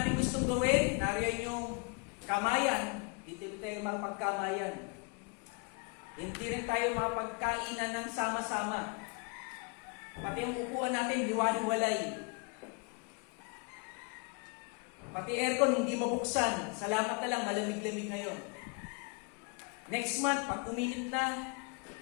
gustong gawin, nariyan yung kamayan, dito tayo makapagkamayan. Hindi rin tayo makapagkainan ng sama-sama. Pati ang upuan natin, hiwa-hiwalay. Pati aircon, hindi mabuksan. Salamat na lang, malamig-lamig ngayon. Next month, pag uminit na,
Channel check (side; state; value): right; quieter; 32.5 dB